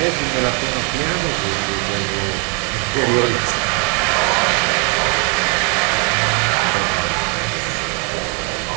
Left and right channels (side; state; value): left; quieter; 36.3 dB